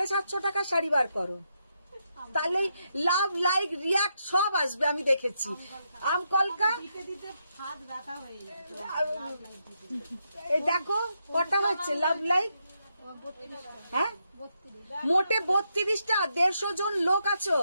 টাকার শাড়ি বার করো, তাহলে লাভ লাইক রিয়াক্ট সব আসবে, আমি দেখেছি। আম কলকা দিতে দিতে হাত ব্যথা হয়ে যায়। এই দেখো কটা হচ্ছে লাভ লাইক, হ্যাঁ 32 মোটে 32টা, 150 জন লোক আছো,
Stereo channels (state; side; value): inverted; both; correlation -0.81